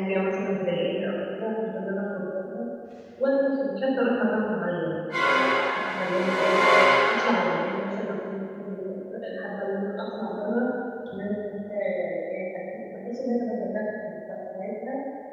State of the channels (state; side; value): identical; both; correlation 1.00